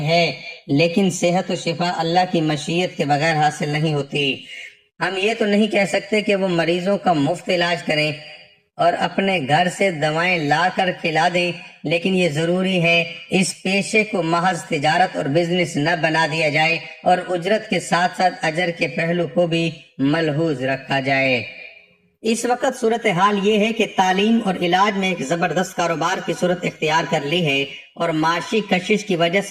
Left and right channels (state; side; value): identical; both; correlation 1.00